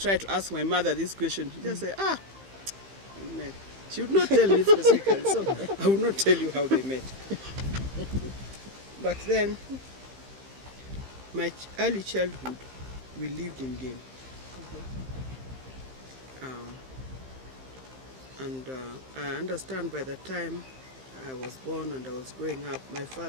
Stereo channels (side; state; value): left; late; 15 ms